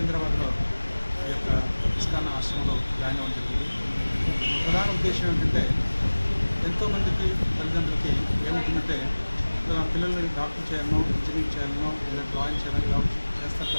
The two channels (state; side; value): inverted; both; correlation -1.00